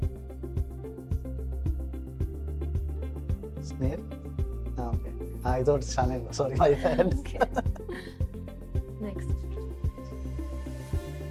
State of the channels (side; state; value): both; identical; correlation 1.00